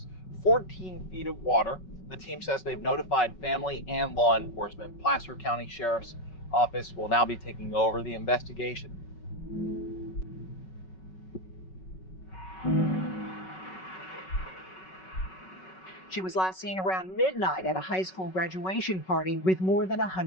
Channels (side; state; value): right; late; 5.3 ms